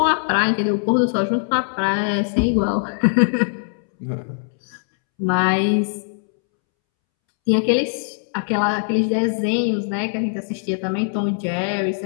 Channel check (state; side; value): silent; right; 65 dB below the other